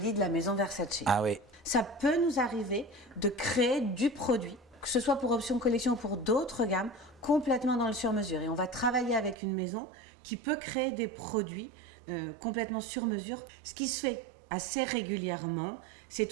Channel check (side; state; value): left; drops out; at 9.3 s